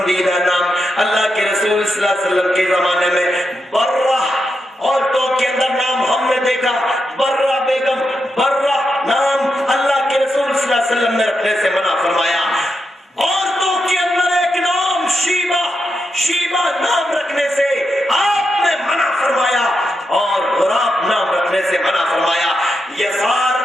نام اللہ کے رسول صلی اللہ علیہ وسلم کے زمانے میں برہ، عورتوں کے اندر نام ہم نے دیکھا برہ بیگم، برہ نام اللہ کے رسول صلی اللہ علیہ وسلم نے رکھنے سے منع فرمایا۔ عورتوں کے اندر ایک نام شیبہ، شیبہ نام رکھنے سے آپ نے منع فرمایا، اور غراب نام رکھنے سے منع فرمایا۔ یسار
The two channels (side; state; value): both; normal; correlation 0.85